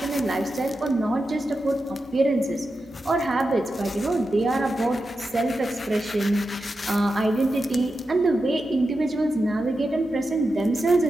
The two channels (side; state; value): both; normal; correlation 0.90